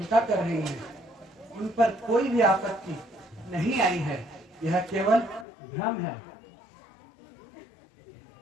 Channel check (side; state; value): right; drops out; at 5.5 s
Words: कर रही हैं। उन पर कोई भी आपत्ति नहीं आई है। यह केवल भ्रम है।